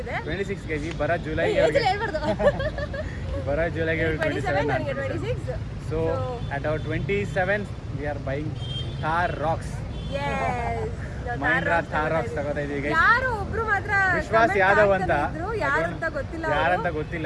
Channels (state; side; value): identical; both; correlation 1.00